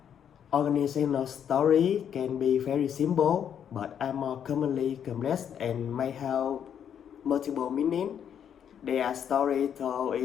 organizational story can be very simple but are more commonly complex and may have multiple meanings. They are stories told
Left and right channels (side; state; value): right; quieter; 8.7 dB